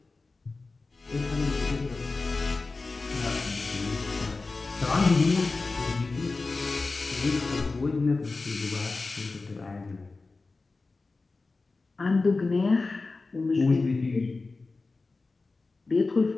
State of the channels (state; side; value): quieter; right; 3.7 dB